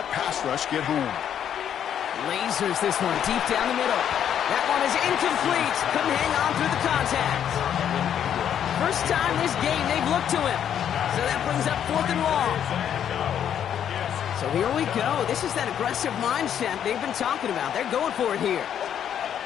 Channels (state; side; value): quieter; right; 9.3 dB